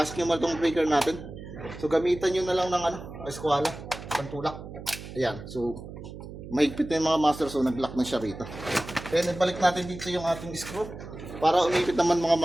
nyo mal itong breaker natin. So gamitan nyo na lang ng eskwala, pantulak. Ayan. So mahigpit na yung mga master, so nag-lock na siya rito. Then ibalik natin dito yung ating screw para umipit naman mga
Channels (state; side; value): noise; right; hum, 12 dB below the sound